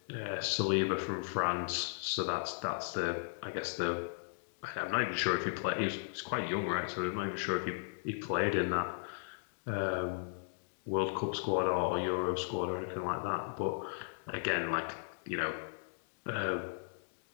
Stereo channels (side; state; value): right; silent; digital silence